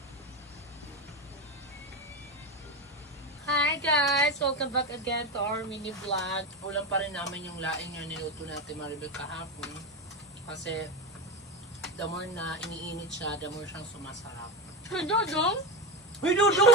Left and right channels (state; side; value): normal; both; correlation 0.15